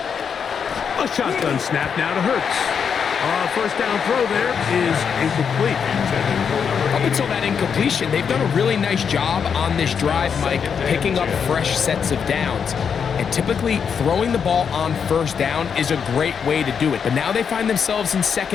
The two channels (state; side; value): quieter; right; 6.8 dB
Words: A shotgun snap now to Hurts. First down throw there is incomplete. Up until that incompletion, they've done a really nice job on this drive, Mike, picking up fresh sets of downs. And typically, throwing the ball on first down is a great way to do it. But now they find themselves in